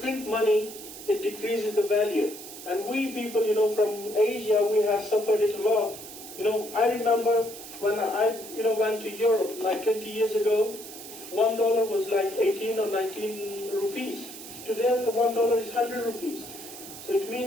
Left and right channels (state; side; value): noise; right; hiss, 13 dB below the sound